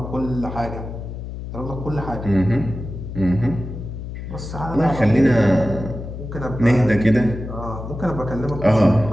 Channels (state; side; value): noise; left; hum, 8 dB below the sound